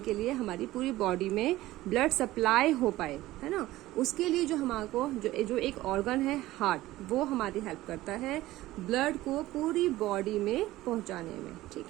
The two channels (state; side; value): quieter; left; 16.6 dB